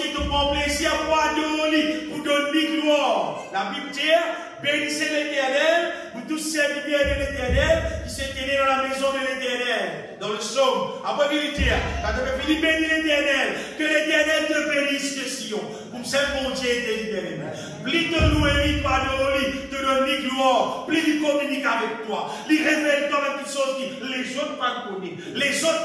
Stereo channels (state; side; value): identical; both; correlation 1.00